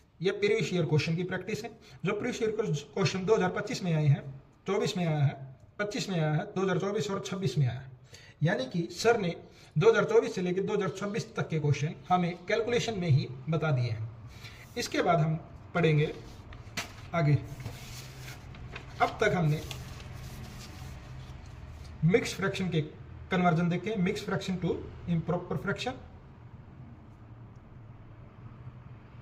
ये प्रीवियस ईयर क्वेश्चन की प्रैक्टिस है। जो प्रीवियस ईयर क्वेश्चन 2025 में आए हैं, 24 में आया है, 25 में आया है, 2024 और 26 में आया है। यानी कि सर ने 2024 से लेकर 2026 तक के क्वेश्चन हमें कैलकुलेशन में ही बता दिए हैं। इसके बाद हम पढ़ेंगे आगे। अब तक हमने मिक्स फ्रैक्शन के कन्वर्जन देखे, mix fraction to improper fraction,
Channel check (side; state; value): both; identical; correlation 1.00